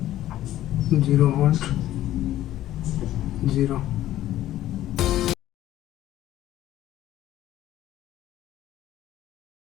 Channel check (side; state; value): right; quieter; 13.6 dB